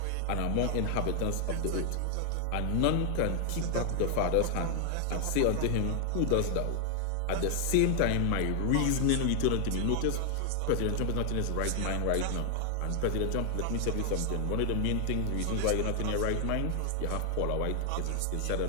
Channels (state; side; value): different; both; correlation 0.00